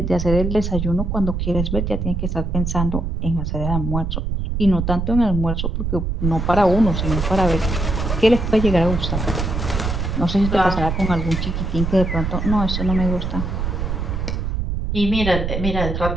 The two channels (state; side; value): noise; right; rumble, 2 dB below the sound